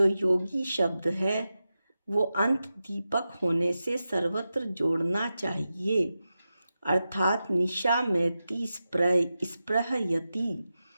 योगी शब्द है वो अंत दीपक होने से सर्वत्र जोड़ना चाहिए, अर्थात निशामयति स्पृहयति।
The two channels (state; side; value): inverted; both; correlation -0.92